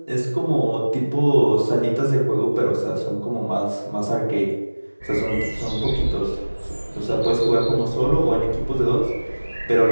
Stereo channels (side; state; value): both; inverted; correlation -1.00